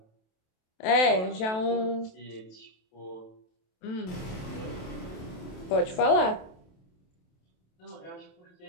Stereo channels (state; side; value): late; right; 27 ms